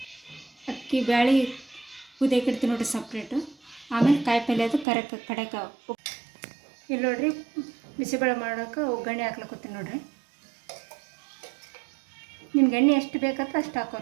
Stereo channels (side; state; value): left; drops out; at 4.9 s